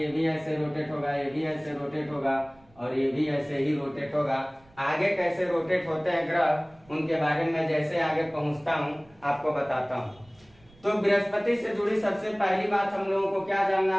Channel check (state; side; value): noise; right; rumble, 29 dB below the sound